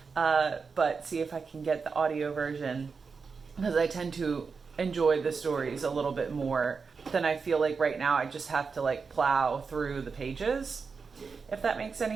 but see if I can get the audio version, because I tend to enjoy the stories a little bit more than I feel like right now I just have to like plow through the pages, if that makes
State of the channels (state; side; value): quieter; left; 5.1 dB